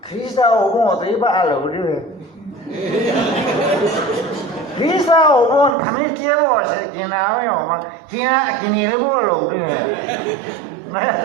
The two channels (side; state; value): left; drops out; at 5.8 s